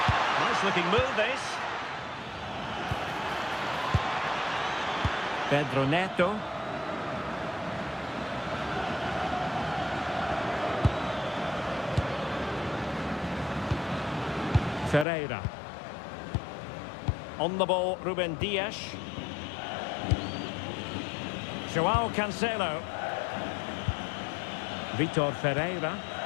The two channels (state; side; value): drops out; right; at 15.1 s